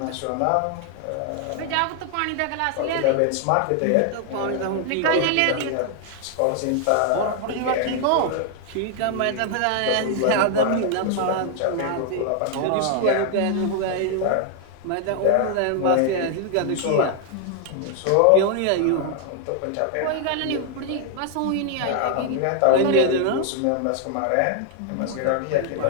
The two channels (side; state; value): both; different; correlation 0.00